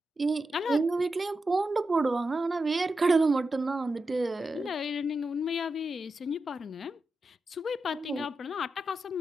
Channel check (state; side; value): normal; both; correlation 0.89